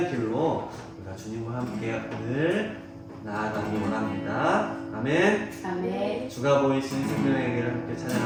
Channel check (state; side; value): identical; both; correlation 1.00